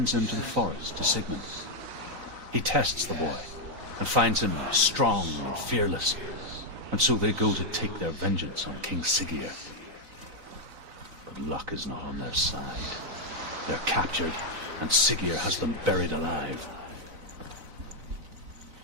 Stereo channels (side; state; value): left; late; 4.0 ms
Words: him to the forest to Sigmund. He tests the boy and finds him strong and fearless, and so they go to take their vengeance on King Siggeir. But luck is not on their side. They're captured, and Siggeir has them buried alive.